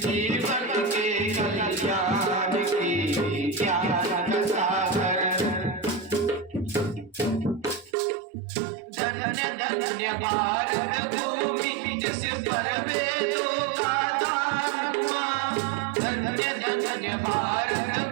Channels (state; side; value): drops out; left; at 8.0 s